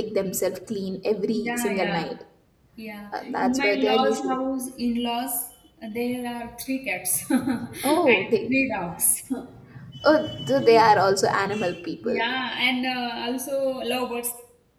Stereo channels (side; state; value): both; identical; correlation 1.00